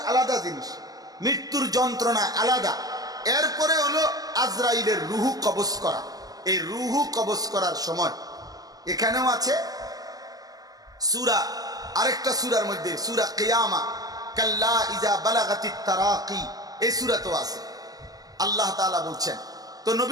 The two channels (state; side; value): late; left; 0.18 ms